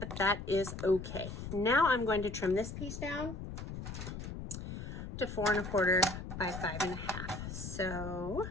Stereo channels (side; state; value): left; noise; rumble, 8 dB below the sound